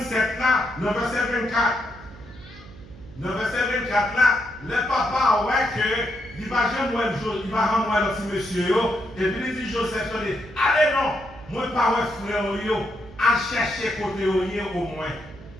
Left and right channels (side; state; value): right; noise; hum, 19 dB below the sound